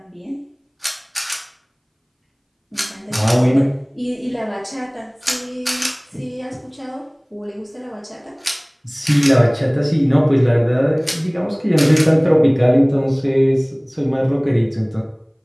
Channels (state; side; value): identical; both; correlation 1.00